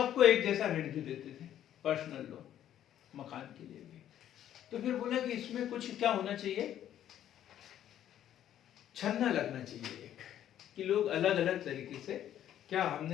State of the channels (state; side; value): quieter; right; 11.1 dB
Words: एक जैसा ऋण भी देते थे, पर्सनल लोन, मकान के लिए भी। तो फिर बोला कि इसमें कुछ क्या होना चाहिए, छन्ना लगना चाहिए एक, कि लोग अलग अलग तरीके से। क्या